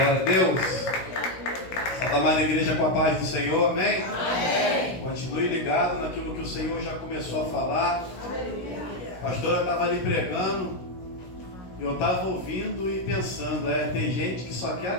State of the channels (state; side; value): late; right; 16 ms